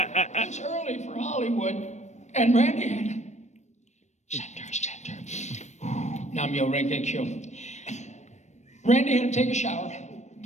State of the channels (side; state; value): right; late; 0.34 ms